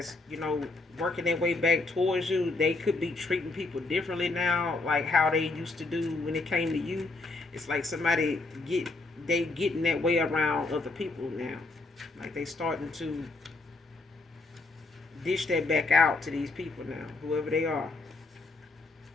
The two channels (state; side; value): quieter; right; 3.4 dB